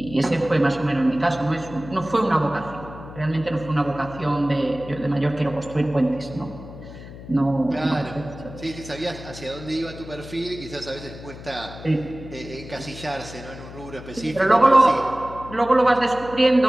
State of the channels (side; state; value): left; noise; hum, 14 dB below the sound